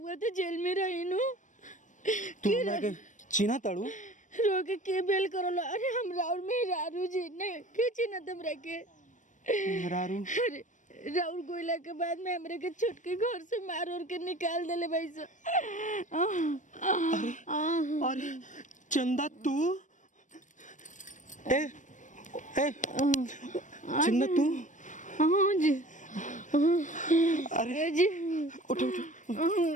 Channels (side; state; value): right; late; 0.37 ms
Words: तो जेल में रही नु तू हमरा के चिन्हा तड़ू रोके के बेल करलो अरे हमरा और मेहरारू जी ने के चिन्हा हमरा के मेहरारू अरे राउर गोइला के बाद में हमरे के छुटकी घर से मार और के निकाल देले भाई सो अरे अरे चंदा तू ए ए चंदा तू हां जी अरे जी उठ उठ